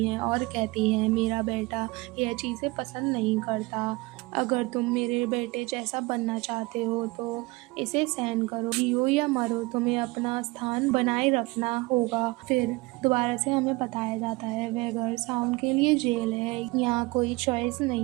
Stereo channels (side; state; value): left; quieter; 23.2 dB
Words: हैं और कहती हैं, मेरा बेटा यह चीज़ें पसंद नहीं करता। अगर तुम मेरे बेटे जैसा बनना चाहते हो तो इसे सहन करो। जियो या मरो, तुम्हें अपना स्थान बनाए रखना होगा। फिर दोबारा से हमें बताया जाता है वह घर साउंड के लिए जेल है। यहाँ कोई चॉइस